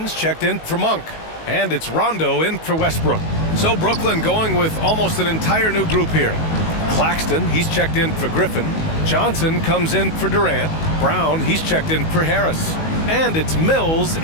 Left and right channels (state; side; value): late; right; 19 ms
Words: checked in for Monk. And it's Rondo in for Westbrook. So Brooklyn going with almost an entire new group here. Claxton, he's checked in for Griffin. Johnson comes in for Durant. Brown, he's checked in for Harris. And it's Mills